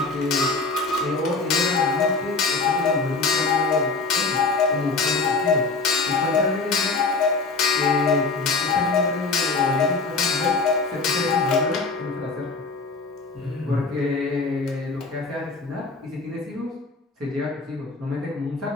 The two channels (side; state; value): right; quieter; 4.0 dB